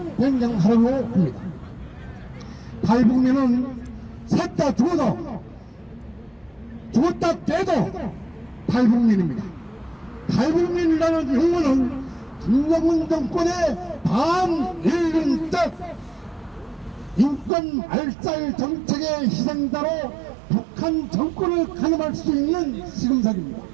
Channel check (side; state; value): left; drops out; at 17.5 s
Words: 변경하려고 합니다. 탈북민은 셋 다 죽어도 죽었다 깨도 탈북민입니다. 탈북민이라는 용어는 김정은 정권의 반일륜적 인권 말살 정책의 희생자로 북한 정권을 가늠할 수 있는 시금석입니다.